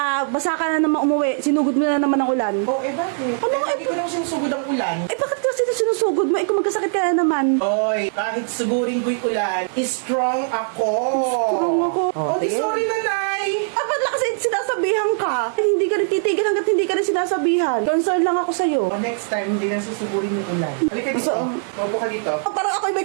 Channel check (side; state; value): left; silent; digital silence